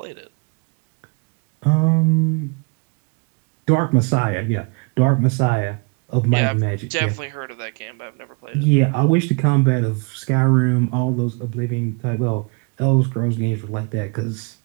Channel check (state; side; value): quieter; left; 33.2 dB